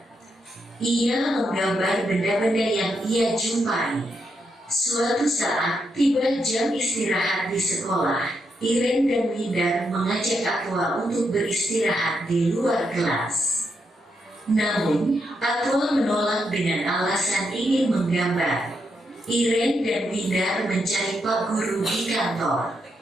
Ia menggambar benda-benda yang ia jumpai. Suatu saat, tiba jam istirahat di sekolah. Iren dan Windar mengajak Atwa untuk beristirahat di luar kelas. Namun, Atwa menolak dengan alasan ingin menggambar. Iren dan Windar mencari Pak Guru di kantor.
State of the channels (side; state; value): both; normal; correlation 0.81